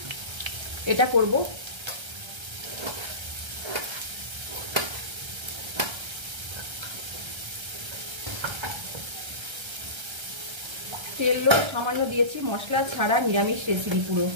এটা করব। তেলও সামান্য দিয়েছি, মশলা ছাড়া নিরামিষ রেসিপি পুরো।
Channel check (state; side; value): late; left; 1.3 ms